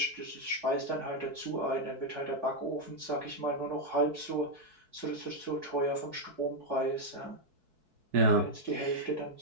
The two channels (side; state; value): left; late; 4.6 ms